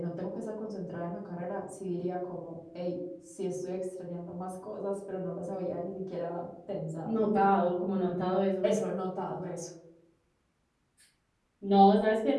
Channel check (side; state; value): both; identical; correlation 1.00